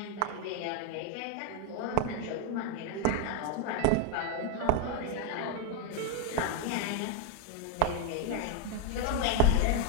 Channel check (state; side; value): different; both; correlation 0.01